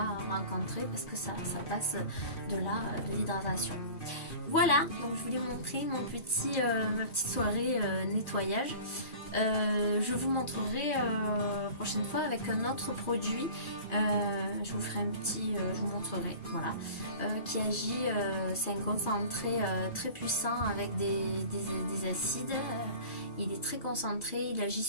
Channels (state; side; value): late; right; 2.4 ms